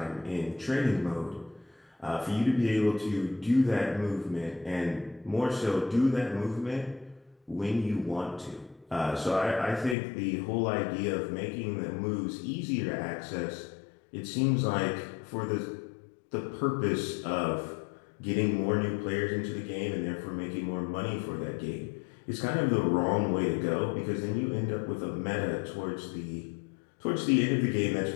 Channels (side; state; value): right; drops out; at 10.0 s